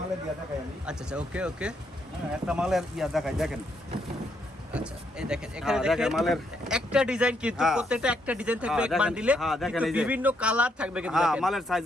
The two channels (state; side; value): normal; both; correlation 0.75